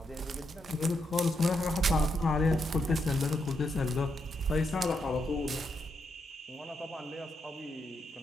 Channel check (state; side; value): normal; both; correlation 0.81